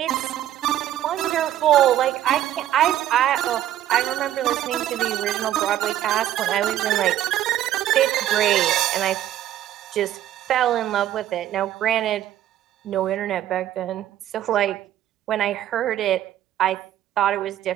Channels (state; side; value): quieter; left; 12.4 dB